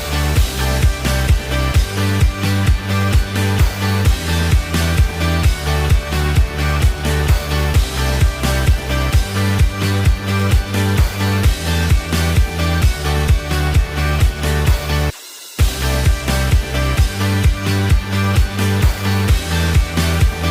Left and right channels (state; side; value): identical; both; correlation 1.00